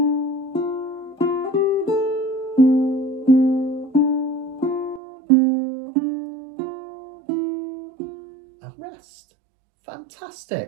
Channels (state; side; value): drops out; left; at 5.0 s